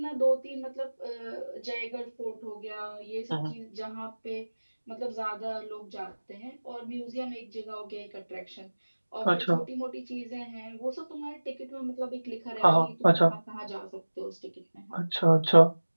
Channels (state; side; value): inverted; both; correlation -1.00